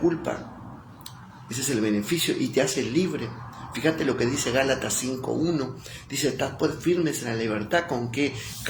ese es el beneficio, y te hace libre. Fíjate lo que dice Gálatas 5:1, dice, estad pues firmes en la libertad con que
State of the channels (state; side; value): identical; both; correlation 1.00